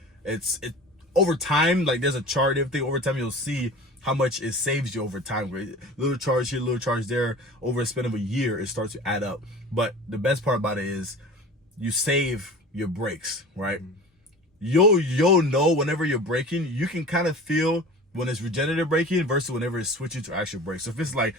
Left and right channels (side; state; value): both; normal; correlation 0.38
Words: it over time, like there's a chart, everything over time, you'll see how much it saves you over time. Right? Little charge here, little charge there. Over a span of a year, it starts to add up. But the best part about it is you save your brakes, right? You'll know whenever you're braking, you can kind of feel when it's regenerative braking versus whenever it's switching to actual brakes. So if it's like